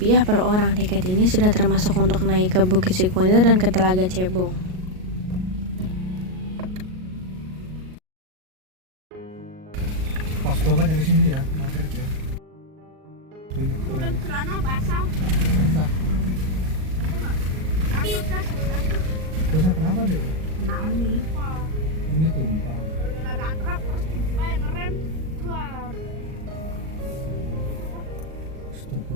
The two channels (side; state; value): left; late; 38 ms